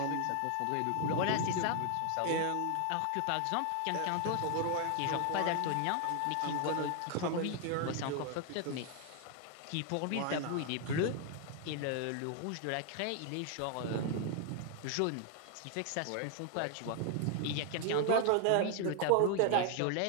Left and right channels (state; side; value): different; both; correlation 0.00